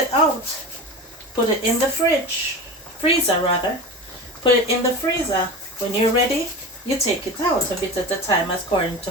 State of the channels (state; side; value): normal; both; correlation 0.29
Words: out, put it in the freezer rather. Put it in the freezer. When you're ready, you take it out a bit at a time according